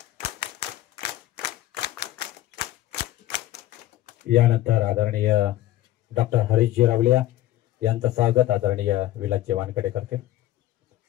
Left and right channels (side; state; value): right; quieter; 14.6 dB